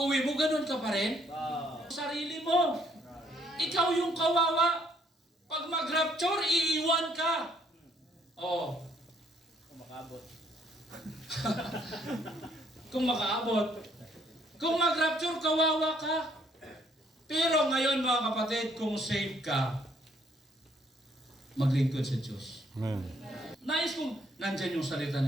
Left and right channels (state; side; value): normal; both; correlation 0.67